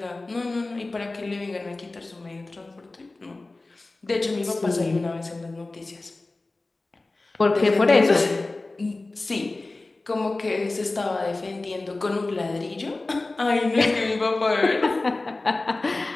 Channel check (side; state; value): right; quieter; 3.2 dB